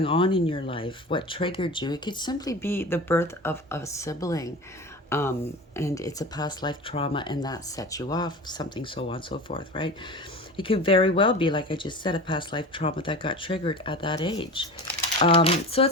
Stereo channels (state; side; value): normal; both; correlation 0.33